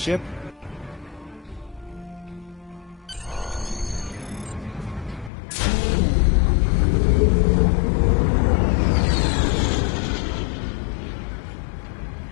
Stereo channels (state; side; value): drops out; right; at 5.3 s